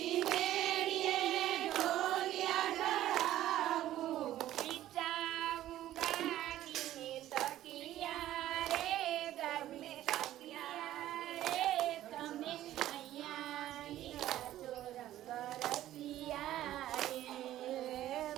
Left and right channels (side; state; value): left; quieter; 13.5 dB